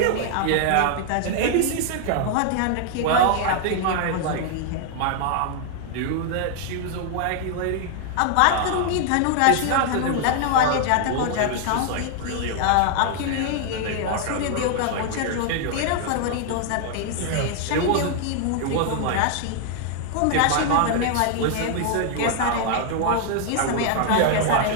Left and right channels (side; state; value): both; different; correlation 0.00